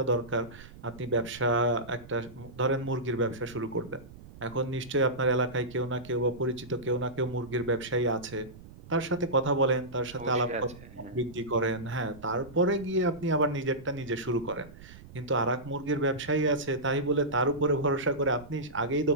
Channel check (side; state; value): right; noise; rumble, 18 dB below the sound